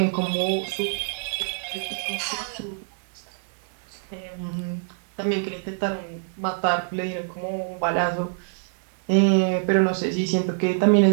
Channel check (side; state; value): left; silent; 56 dB below the other